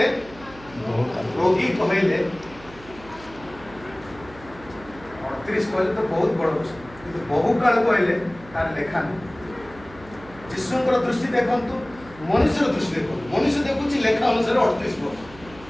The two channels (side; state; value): right; noise; hum, 20 dB below the sound